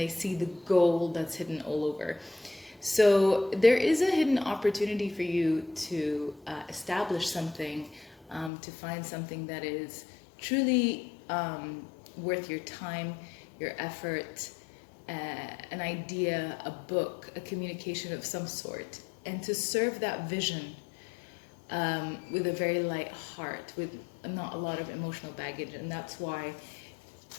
see the gold that's hidden all over. So there is a hidden opportunity for you to establish something, to find something that is truly worth your time, your effort, an idea, a book, a communication of some sort, and to serve that vision with a very light heart, with not a lot of emotional baggage. And that's why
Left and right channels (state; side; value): drops out; right; at 8.5 s